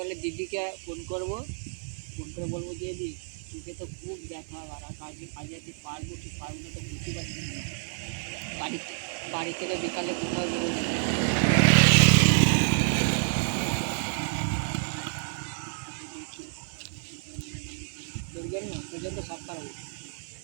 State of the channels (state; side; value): silent; left; digital silence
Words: দিদিকে ফোন করবো, ফোন করে বলবো যে দিদি চোখে তো খুব ব্যথা, আর কাজে কাজে যেতে পারবো কি পারবো না তো বুঝতে পারছি না। বাড়ি বাড়ি থেকে বিকালে কোথাও বেরোবো না। দেখি, তোর জন্য তো সব পারবো,